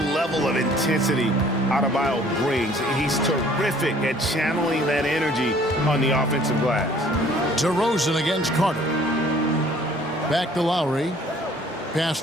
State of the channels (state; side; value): normal; both; correlation 0.56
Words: of intensity Adebayo brings. He's terrific at channeling that energy on the offensive glass. DeRozan against Carter. Back to Lowry. Pass